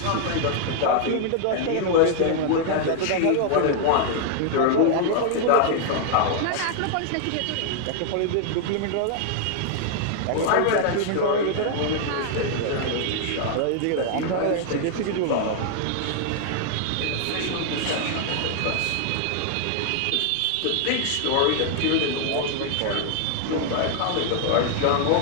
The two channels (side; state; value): both; different; correlation 0.00